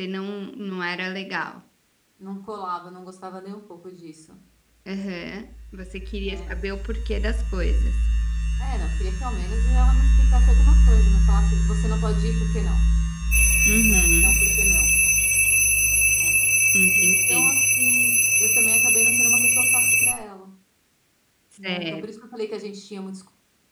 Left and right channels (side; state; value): both; identical; correlation 1.00